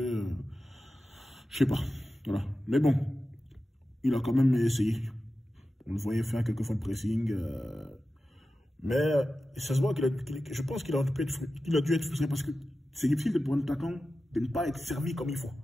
je sais pas. Voilà. Mais bon, il a quand même essayé. On le voyait faire quelques fois de pressing. Mais ça se voit je pense qu'il a dû être frustré parce que c'est difficile pour un attaquant de ne pas être servi comme il faut.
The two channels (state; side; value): normal; both; correlation 0.93